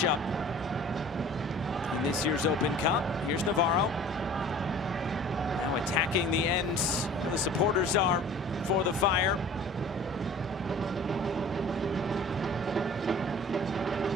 in this year's Open Cup. Here's Navarro. Now attacking the end where the supporters are for the Fire.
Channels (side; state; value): both; normal; correlation 0.45